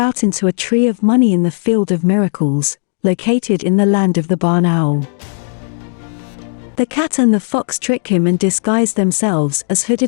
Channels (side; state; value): right; silent; 70 dB below the other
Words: into a tree of money in the Field of Miracles, located in the land of the barn owl. The cat and the fox trick him and disguise themselves as